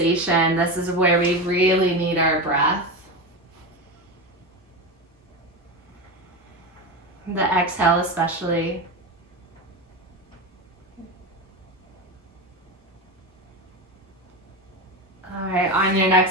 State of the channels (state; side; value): normal; both; correlation 0.20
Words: This is where we really need our breath. The exhale especially. All right, on your